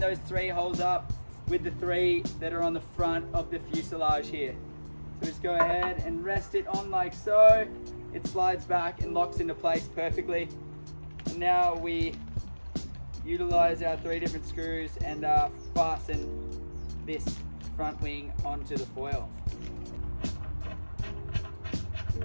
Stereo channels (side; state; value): both; inverted; correlation -1.00